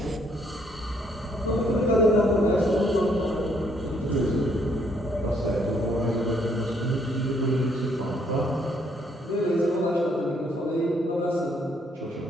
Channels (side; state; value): both; normal; correlation 0.68